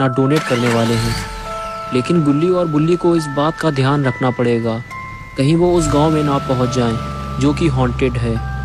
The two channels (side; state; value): both; identical; correlation 1.00